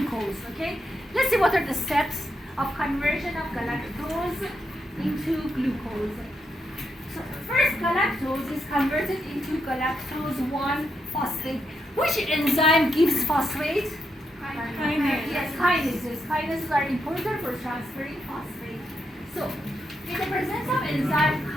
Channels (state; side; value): normal; both; correlation 0.82